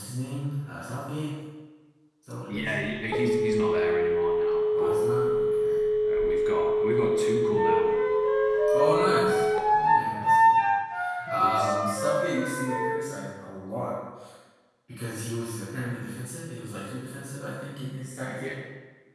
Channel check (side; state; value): both; identical; correlation 1.00